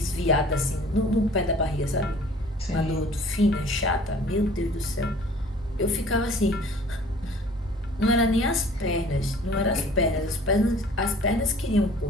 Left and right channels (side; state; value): both; normal; correlation 0.50